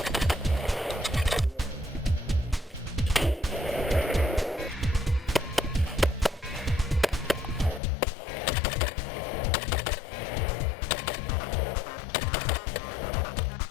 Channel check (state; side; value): drops out; right; at 7.8 s